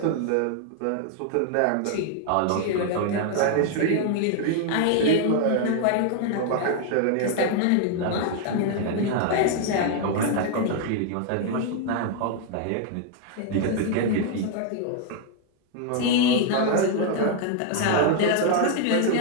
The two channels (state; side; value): different; both; correlation 0.00